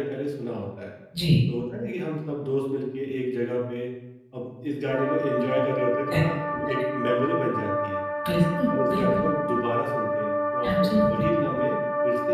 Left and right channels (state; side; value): identical; both; correlation 1.00